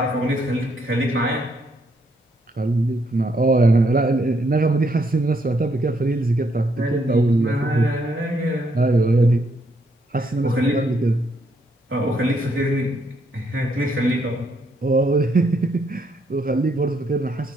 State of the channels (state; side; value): normal; both; correlation 0.74